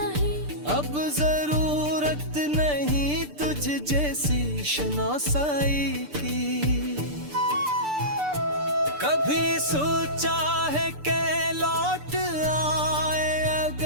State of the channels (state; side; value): late; left; 6.8 ms